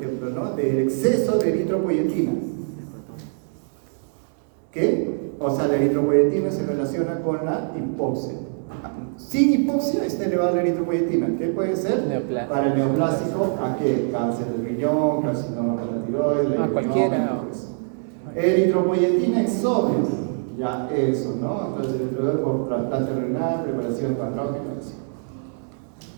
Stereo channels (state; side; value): silent; left; 63 dB below the other